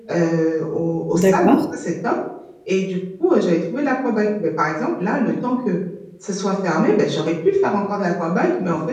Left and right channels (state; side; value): identical; both; correlation 1.00